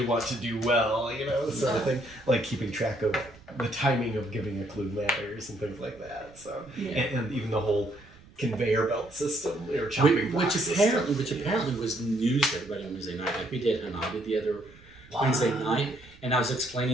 want to do well, you know, sort of thing. Like keeping track of the timing of giving a clue matters and things like that. So, Yeah. and even the whole conveyor belt system or chopping block Which system. apparently was news to everybody on Wednesday night. Like we did Hanabi the other Wednesday night, and I was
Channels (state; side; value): noise; right; rumble, 24 dB below the sound